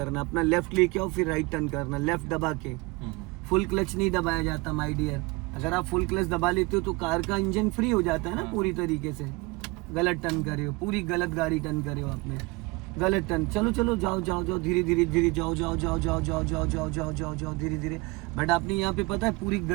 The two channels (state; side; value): quieter; left; 25.2 dB